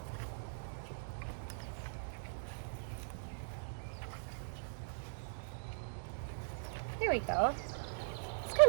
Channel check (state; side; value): silent; left; digital silence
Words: There we go. It's